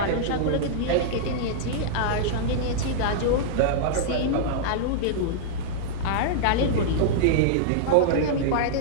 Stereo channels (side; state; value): both; different; correlation -0.02